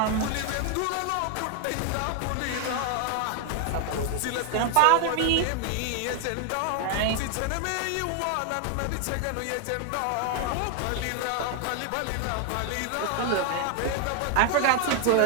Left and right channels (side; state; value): both; different; correlation 0.00